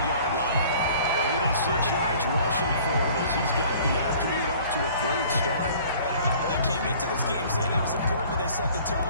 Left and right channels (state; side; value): inverted; both; correlation -0.50